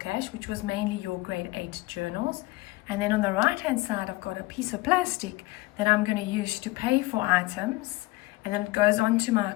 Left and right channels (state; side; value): quieter; right; 20.5 dB